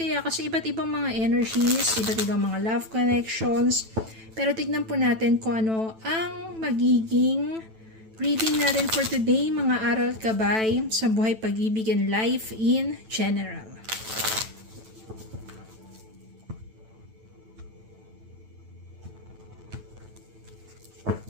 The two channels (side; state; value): left; late; 9.1 ms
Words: kasi iba't ibang mga energies, iba't ibang mga love connections. Pero tignan po natin kung ano ang magiging reading natin for today, mga aral gabay sa buhay, pag-ibig, and life in general.